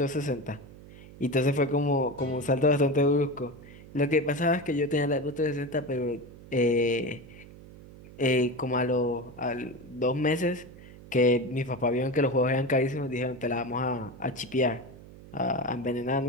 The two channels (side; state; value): right; noise; hum, 18 dB below the sound